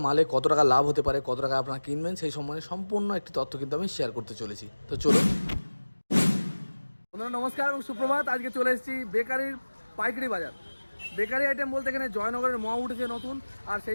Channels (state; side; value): inverted; both; correlation -1.00